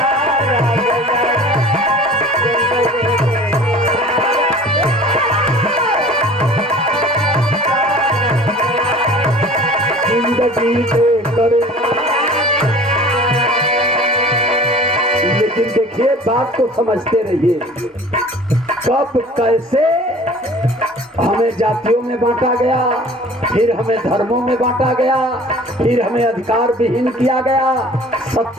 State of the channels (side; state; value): both; normal; correlation 0.45